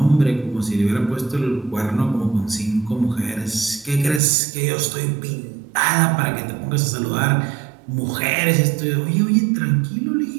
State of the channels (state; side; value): drops out; left; at 4.2 s